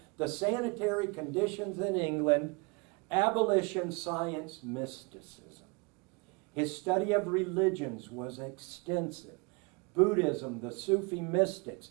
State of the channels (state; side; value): quieter; left; 29.7 dB